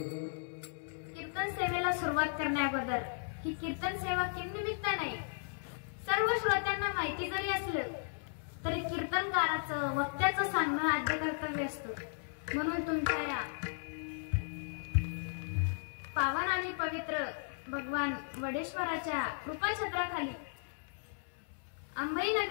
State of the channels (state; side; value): silent; right; 54 dB below the other